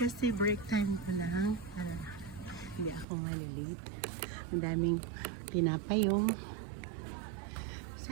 break time ko lang. Hindi ako malilate. Ang daming tinapay yung.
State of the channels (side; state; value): left; drops out; at 3.1 s